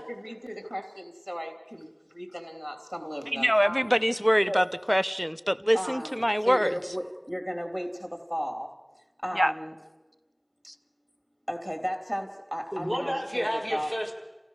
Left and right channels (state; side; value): identical; both; correlation 1.00